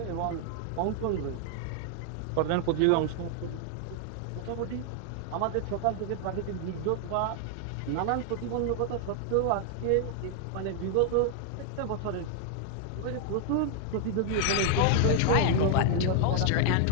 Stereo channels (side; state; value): both; different; correlation 0.00